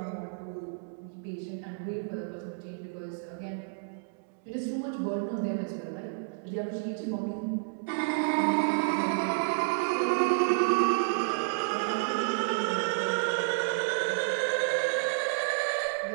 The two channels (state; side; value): silent; left; digital silence